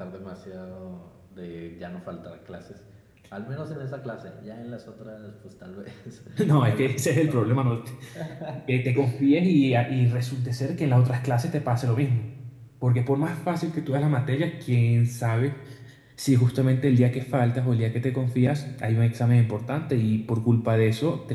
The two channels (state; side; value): identical; both; correlation 1.00